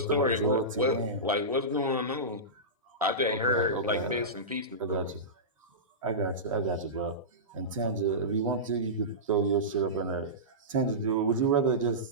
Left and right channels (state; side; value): normal; both; correlation -0.17